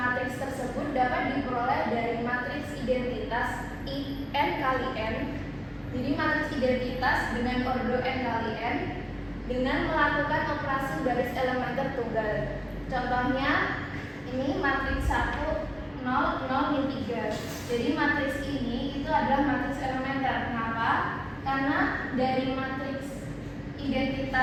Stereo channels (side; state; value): both; identical; correlation 1.00